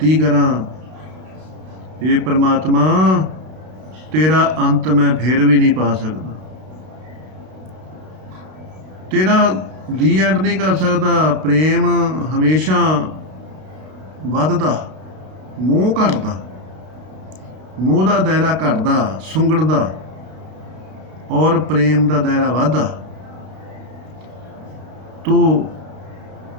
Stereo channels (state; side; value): late; left; 32 ms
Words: ਕਰਾਂ, ਇਹ ਪਰਮਾਤਮਾ ਤੇਰਾ ਅੰਤ ਮੈਂ ਫਿਰ ਵੀ ਨਹੀਂ ਪਾ ਸਕਦਾ, ਤੇਰਾ ਦੀ ਐਂਡ ਨਹੀਂ ਕਰ ਸਕਦਾ। ਪ੍ਰੇਮ ਹਮੇਸ਼ਾ ਵੱਧਦਾ, ਮੋਹ ਘਟਦਾ, ਮੋਹ ਦਾ ਦਾਇਰਾ ਘਟਦਾ, ਸੁੰਗੜਦਾ, ਔਰ ਪ੍ਰੇਮ ਦਾ ਦਾਇਰਾ ਵੱਧਦਾ। ਤੋ